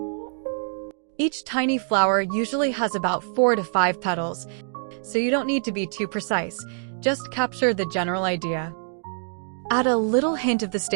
Each tiny flower usually has about 4 to 5 petals, so you don't need to be too precise, just capture the general idea. Add a little hint of the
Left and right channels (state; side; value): silent; left; digital silence